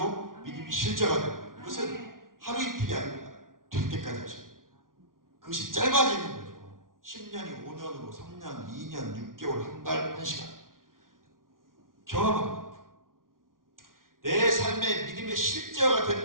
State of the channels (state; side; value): late; left; 0.90 ms